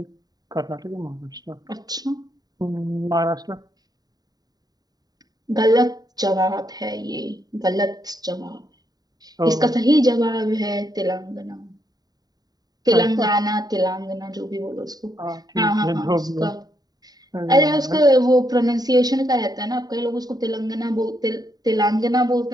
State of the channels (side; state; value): left; late; 0.19 ms